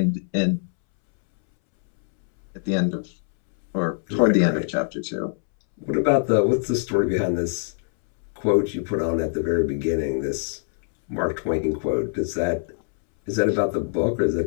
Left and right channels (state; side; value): silent; right; 63 dB below the other